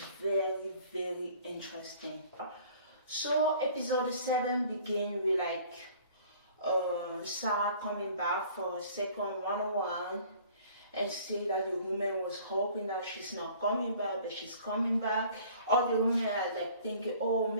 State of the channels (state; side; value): inverted; both; correlation -0.51